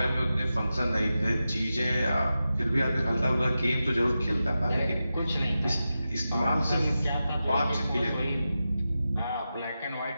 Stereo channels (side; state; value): both; inverted; correlation -0.91